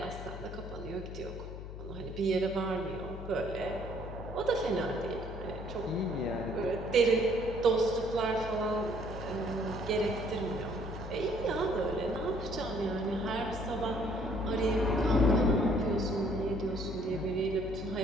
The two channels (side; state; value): left; noise; hum, 10 dB below the sound